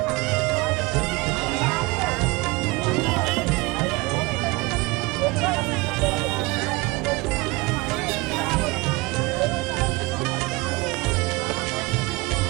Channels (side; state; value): left; quieter; 23.5 dB